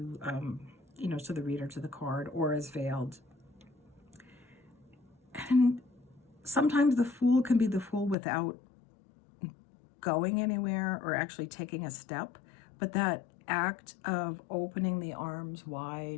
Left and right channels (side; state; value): right; drops out; at 8.2 s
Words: you know, to the reader, to the card, or is veiled. And And sometimes the Fool can be the Fool without going anywhere or actually taking a step, but that act of opening the arms